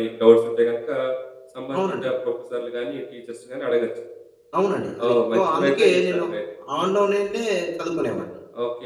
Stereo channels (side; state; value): both; identical; correlation 1.00